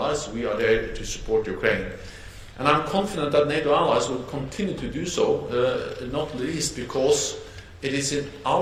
We are there to support Ukraine. And I'm confident that NATO allies will continue to do so, not least because it is in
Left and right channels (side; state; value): both; identical; correlation 1.00